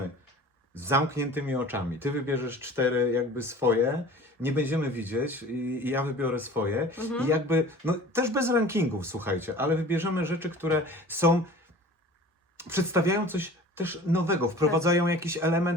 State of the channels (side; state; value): both; normal; correlation 0.43